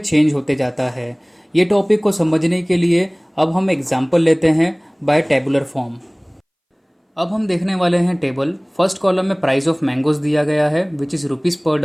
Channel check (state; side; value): identical; both; correlation 1.00